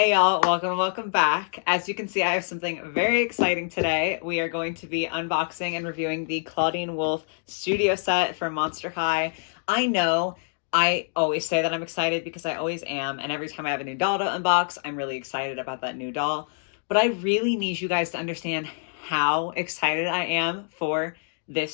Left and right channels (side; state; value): right; silent; digital silence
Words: y'all, welcome back. As you can see, I have something very exciting today. We are going to be unboxing and reviewing the Clawdeen Wolf studio set from Monster High. I know I always say that I'm excited because I always am, and every time I have a new doll to unbox, I'm really excited about that new doll. But I really need you guys to understand how excited I am for